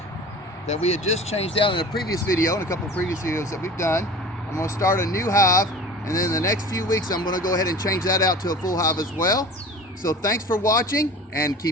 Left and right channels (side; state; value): both; normal; correlation 0.39